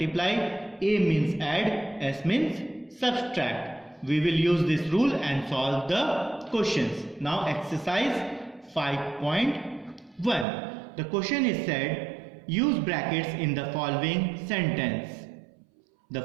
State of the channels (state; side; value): drops out; left; at 10.5 s